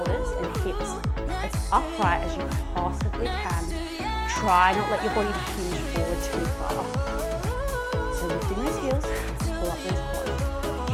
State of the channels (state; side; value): identical; both; correlation 1.00